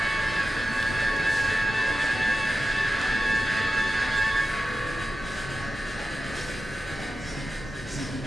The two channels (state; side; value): normal; both; correlation 0.93